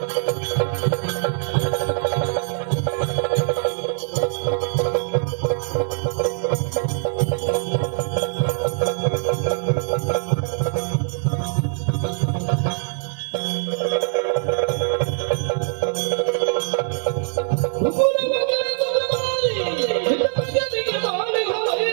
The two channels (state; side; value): silent; left; 64 dB below the other